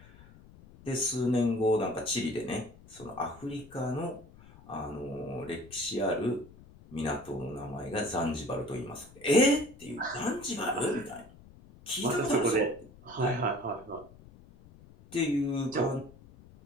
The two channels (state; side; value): noise; left; rumble, 21 dB below the sound